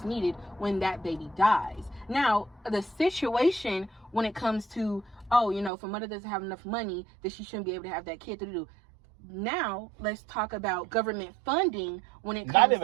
needed when that baby dies. Now, the situation when it comes to, if a mother doesn't have enough money, then she shouldn't be able to have that kid to do. Now, let's talk about government funding when it comes to... Not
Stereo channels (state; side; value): drops out; left; at 5.7 s